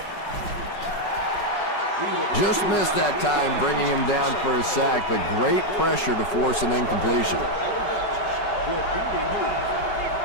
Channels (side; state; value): right; late; 5.6 ms